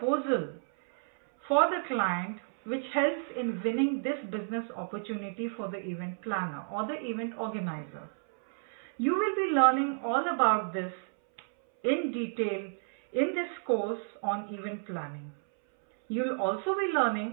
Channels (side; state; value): left; silent; 57 dB below the other